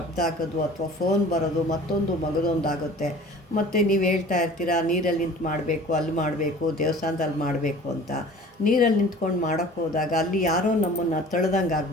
ಆಗೋದು, ಅಥವಾ ಫೋನ್ ಬರೋದು, ಮತ್ತೊಂದು ಮಗದೊಂದು ಆಗುತ್ತೆ. ಮತ್ತು ನೀವು ಹೇಳ್ತಾ ಇರ್ತೀರಾ ನೀರಲ್ಲಿ ನಿಂತು ಮಾಡಬೇಕು, ಅಲ್ಲಿ ಮಾಡಬೇಕು, ದೇವಸ್ಥಾನದಲ್ಲಿ ಮಾಡಬೇಕು ಅಂತ. ನೀರಲ್ಲಿ ನಿಂತ್ಕೊಂಡು ಮಾಡೋಕ್ಕೆ ಹೋದಾಗ ಅಲ್ಲಿ ಯಾರೋ ನಮ್ಮನ್ನು ತಳ್ದಂಗೆ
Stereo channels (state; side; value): normal; both; correlation 0.45